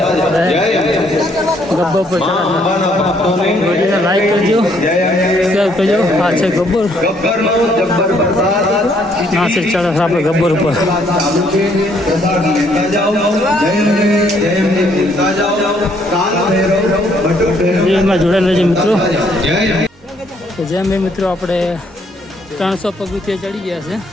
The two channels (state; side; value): normal; both; correlation 0.68